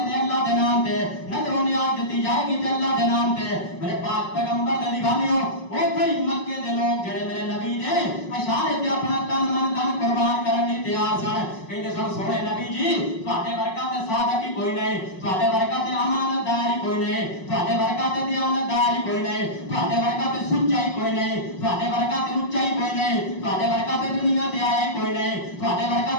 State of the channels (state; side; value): late; right; 5.5 ms